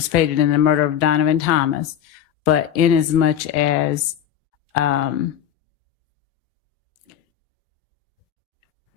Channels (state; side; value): quieter; right; 9.8 dB